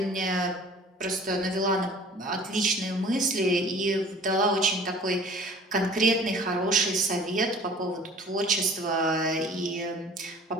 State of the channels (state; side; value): normal; both; correlation 0.47